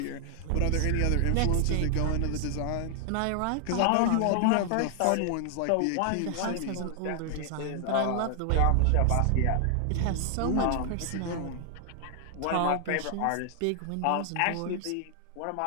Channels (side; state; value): both; different; correlation 0.00